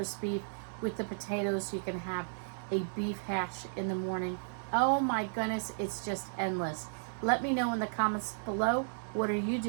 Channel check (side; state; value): left; silent; digital silence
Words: beef with the potatoes, so you can have a beef hash in the morning. Oh my goodness, it's just endless. Let me know in the comments below, what are you